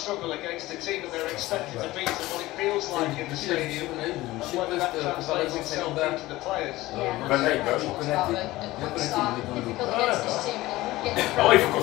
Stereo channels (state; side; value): quieter; right; 18.1 dB